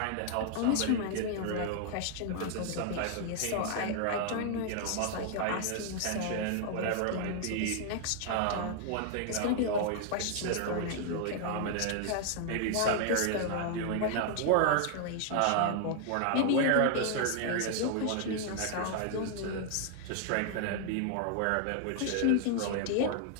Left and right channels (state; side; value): different; both; correlation 0.00